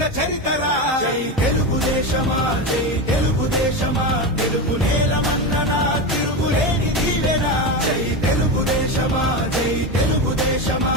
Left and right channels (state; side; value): normal; both; correlation 0.18